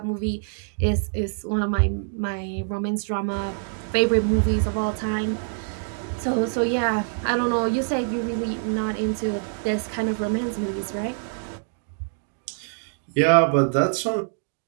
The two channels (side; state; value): left; silent; 62 dB below the other